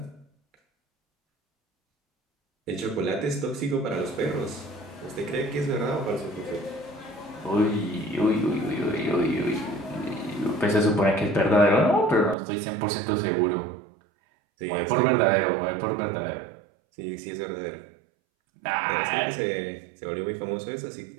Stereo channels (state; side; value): drops out; left; at 12.4 s